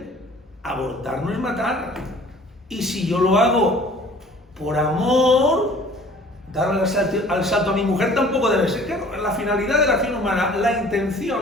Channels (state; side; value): normal; both; correlation 0.50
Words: abortar no es matar. Y si yo lo hago por amor, darle al salto a mi mujer tampoco debe ser. Claro, la finalidad de la acción humana, la